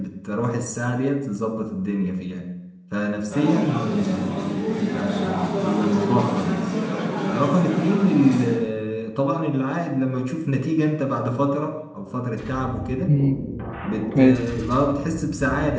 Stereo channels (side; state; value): both; identical; correlation 1.00